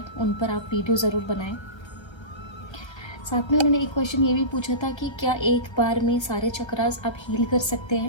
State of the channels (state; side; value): late; right; 1.3 ms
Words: उन पर आप वीडियो ज़रूर बनाएं। साथ में उन्होंने एक क्वेश्चन ये भी पूछा था कि क्या एक बार में सारे चक्रास आप हील कर सकते